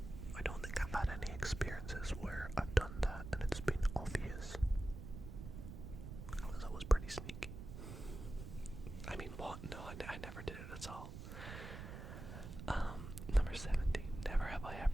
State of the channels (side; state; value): right; noise; rumble, 9 dB below the sound